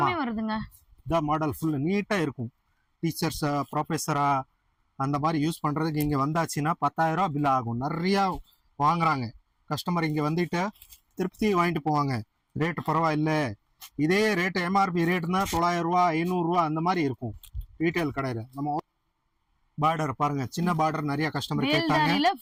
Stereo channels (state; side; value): identical; both; correlation 1.00